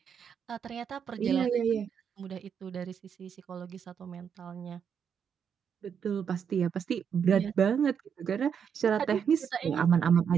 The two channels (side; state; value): left; quieter; 7.5 dB